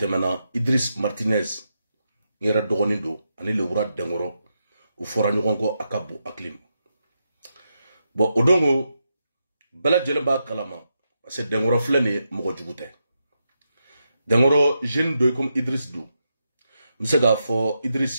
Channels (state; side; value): inverted; both; correlation -0.85